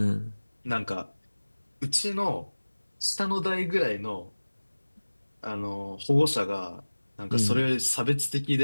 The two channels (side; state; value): both; inverted; correlation -1.00